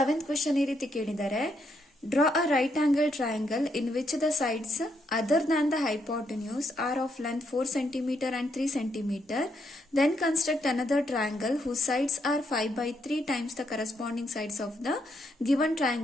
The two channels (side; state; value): both; normal; correlation 0.77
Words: ಕ್ವೆಶ್ಚನ್ ಈ ರೀತಿ ಕೇಳಿದ್ದಾರೆ. Draw a right angle triangle in which the sides other than the hypotenuse are of length 4 cm and 3 cm. Then construct another triangle whose sides are 5/3 times the corresponding sides of the given